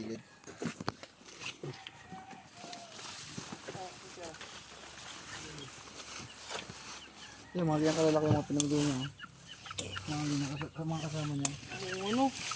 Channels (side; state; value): both; identical; correlation 1.00